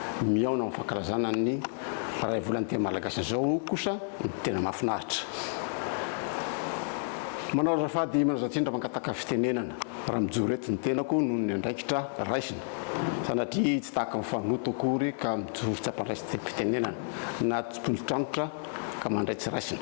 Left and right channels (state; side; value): silent; right; digital silence